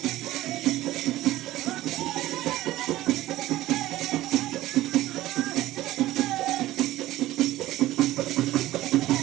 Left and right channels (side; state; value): left; quieter; 15.9 dB